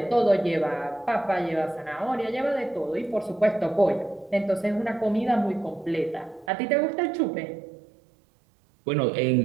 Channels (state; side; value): drops out; left; at 6.5 s